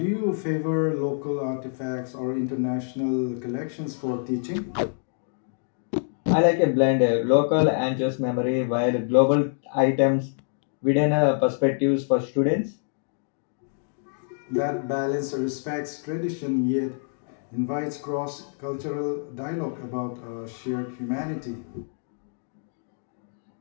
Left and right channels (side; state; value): right; silent; digital silence